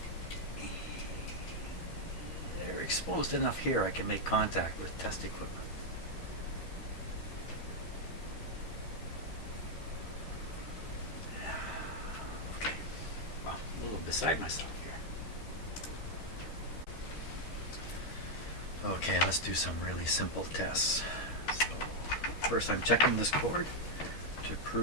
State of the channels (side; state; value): right; late; 12 ms